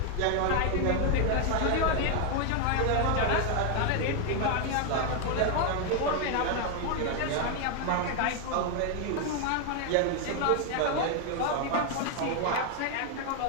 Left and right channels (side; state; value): both; different; correlation 0.01